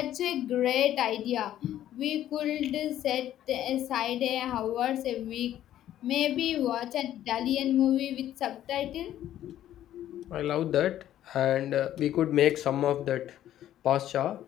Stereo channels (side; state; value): right; quieter; 12.1 dB